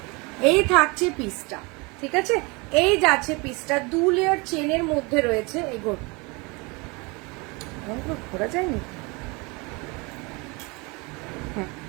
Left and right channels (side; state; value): left; quieter; 27.7 dB